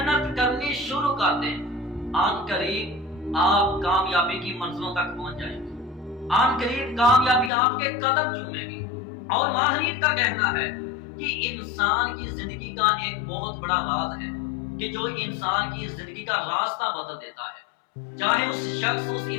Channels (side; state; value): right; drops out; at 7.5 s